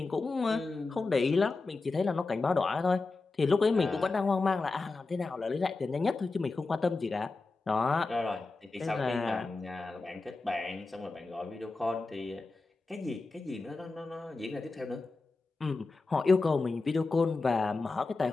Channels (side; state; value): right; quieter; 3.7 dB